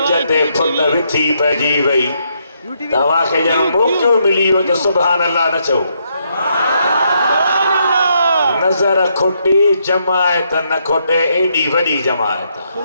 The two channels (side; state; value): both; inverted; correlation -0.76